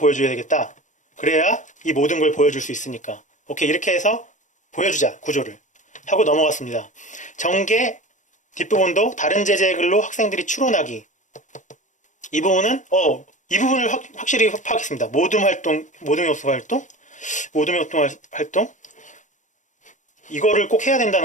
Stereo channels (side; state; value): right; late; 0.36 ms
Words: 되겠다. 그래야 이 모든 걸 보여줄 수 있으니까. 오케이, 이렇게 해서 보여주자. 구조를 하고 넘어갔습니다. 전개 뒷부분도 다른 제재의 글로 학생들이 추론하기. 이 부분은 이 부분을 확실히 파악했습니다. 모둠 요소 활동 이거를 꼭 해야